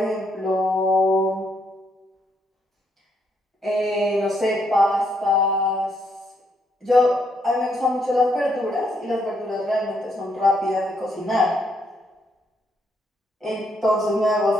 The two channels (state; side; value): normal; both; correlation 0.74